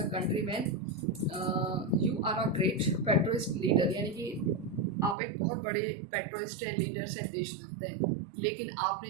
country man you are a great patriot leader, यानी कि आप एक बहुत बड़े पेट्रोइस्ट है, लीडर्स हैं, देशभक्त हैं, लेकिन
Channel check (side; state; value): left; drops out; at 5.2 s